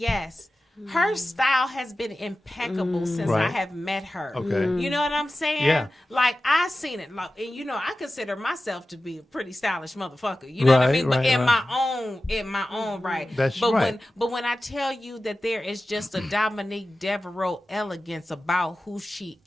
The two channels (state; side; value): normal; both; correlation 0.95